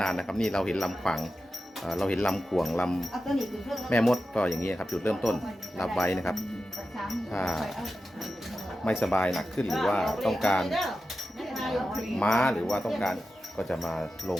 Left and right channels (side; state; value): both; normal; correlation 0.92